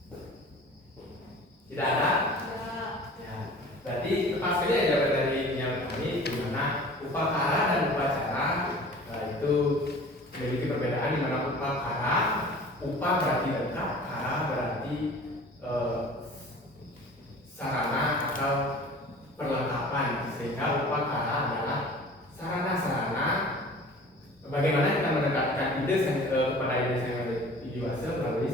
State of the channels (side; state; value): both; normal; correlation 0.44